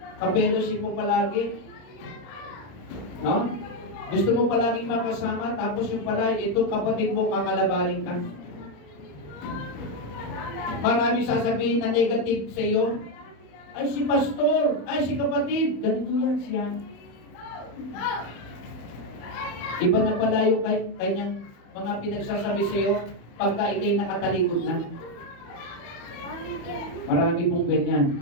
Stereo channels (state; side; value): late; right; 35 ms